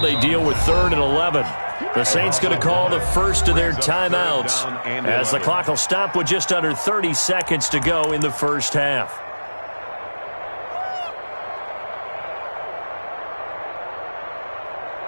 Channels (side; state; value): both; inverted; correlation -1.00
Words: deal with 3rd and 11. The Saints going to call the first of their timeouts as the clock will stop with just under 30 seconds to go in the first half.